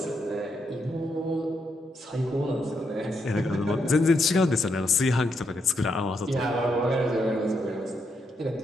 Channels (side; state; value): both; normal; correlation 0.79